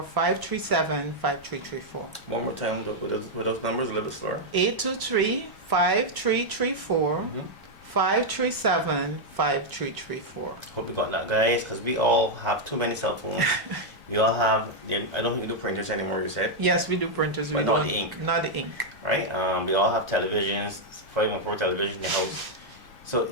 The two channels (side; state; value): both; normal; correlation -0.02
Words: 537-5334. One more time with those numbers, a little bit slower. 823-5334, 537-5334. Hope you got that, guys, because we all have too many cell phones. We all have, I don't think we do printers anymore, you said, Yes, we do printers. But we not don't- the ink. Not the ink. right? We all have televisions, 514 television in the house. So